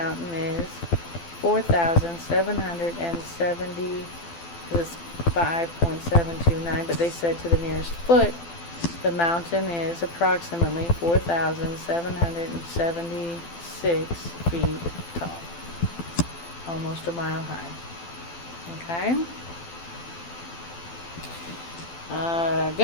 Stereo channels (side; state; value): right; late; 12 ms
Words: is 4,770. This is 5.729, but they said to the nearest foot, the mountain is approximately 4,776 feet tall. Almost a mile high. Okay?